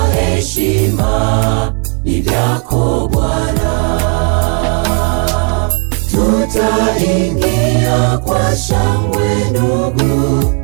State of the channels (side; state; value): left; quieter; 36.2 dB